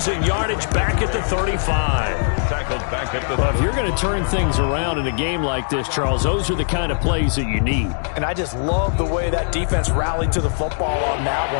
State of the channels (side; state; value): right; silent; digital silence